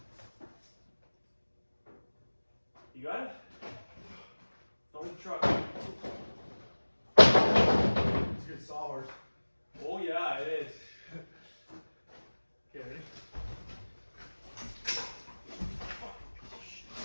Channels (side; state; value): both; inverted; correlation -1.00